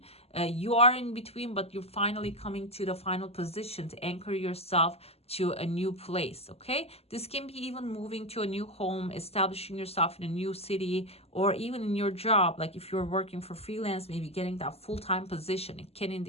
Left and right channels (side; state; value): right; late; 0.29 ms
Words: You are in between, but you're finally coming to the final position to anchor yourself to a new place, okay? This can be even moving to a new home, establishing yourself in a new city, or even in your job. Like if you're working for freelance, maybe getting that full-time position. It can